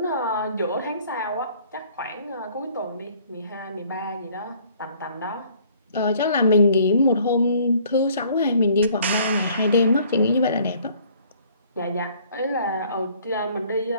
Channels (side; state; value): both; inverted; correlation -0.58